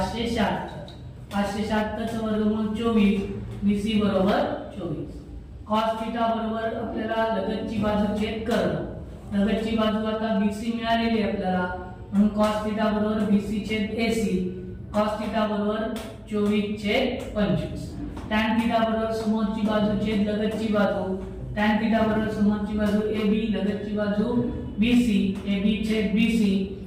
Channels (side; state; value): both; identical; correlation 1.00